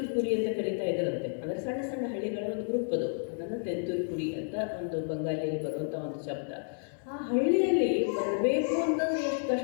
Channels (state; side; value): silent; right; digital silence